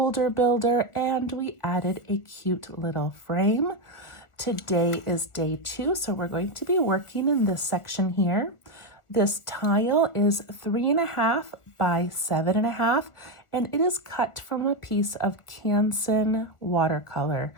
builder, and we added a cute little frame. Today is day 2, so we're going to be working in this section here. This tile is 3.5 by 7.5, and it is cut from a piece of Canson watercolor,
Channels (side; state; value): right; late; 1.4 ms